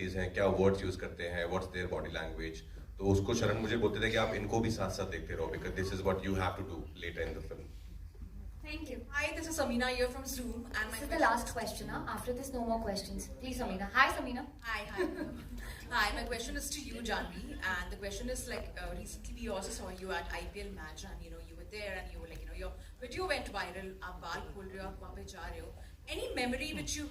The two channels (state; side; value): identical; both; correlation 1.00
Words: हैं, क्या वर्ड्स यूज करते हैं, व्हाट्स देयर बॉडी लैंग्वेज, तो उसको शरण मुझे बोलते थे कि आप इनको भी साथ साथ देखते रहो, because this is what you have to do later in the film. Thank you. Hi, this is Samina here from Zoom, and This is the last question. Huh? After this, no more questions. Please, Samina. Hi, Samina. Hi. Hi, my question is to you, Janvi, and the question is like recently we also saw you at IPL match, and you were there, and you were like your video went viral. आप बाल खोल रहे हो, आप वहाँ पे जा रहे हो. Any memory which you